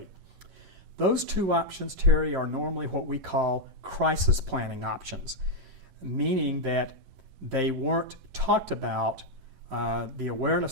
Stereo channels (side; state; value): left; late; 11 ms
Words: Those two options, Terry, are normally what we call crisis planning options, meaning that they weren't talked about. The